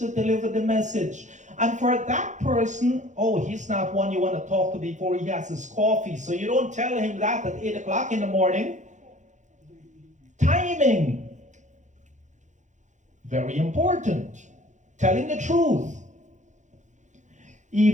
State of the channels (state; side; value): late; left; 0.35 ms